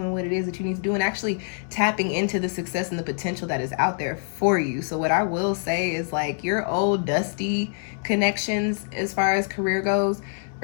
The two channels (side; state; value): right; silent; digital silence